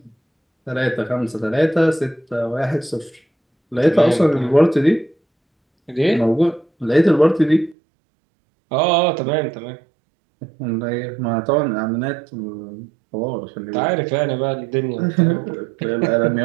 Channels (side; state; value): left; drops out; at 7.8 s